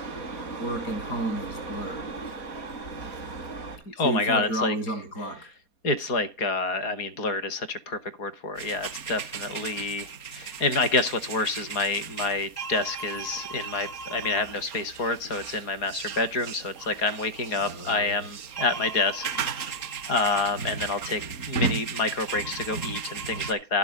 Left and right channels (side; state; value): right; late; 4.2 ms